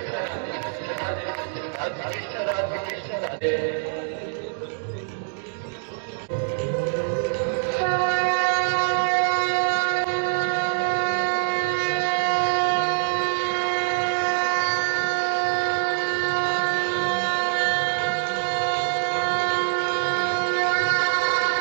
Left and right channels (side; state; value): left; silent; digital silence